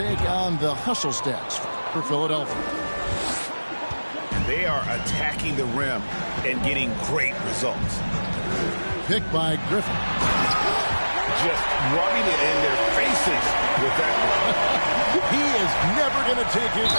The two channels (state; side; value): inverted; both; correlation -1.00